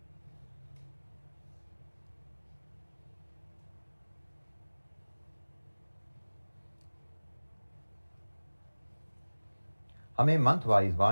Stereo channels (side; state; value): both; inverted; correlation -1.00